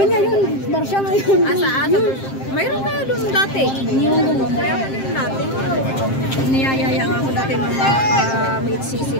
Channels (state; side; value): late; right; 7.6 ms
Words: nga yun, Barca ngayon. Mayroon na doon dati. Yung ganun. Mayroon din dati. Niyayaya nga ako dati mga mid-sisi